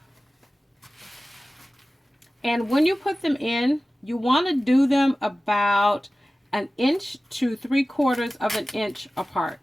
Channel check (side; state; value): both; normal; correlation 0.96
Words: And when you put them in, you want to do them about 1 inch to 3/4 inch